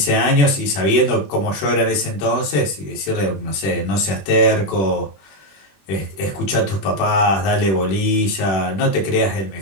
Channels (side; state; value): right; late; 21 ms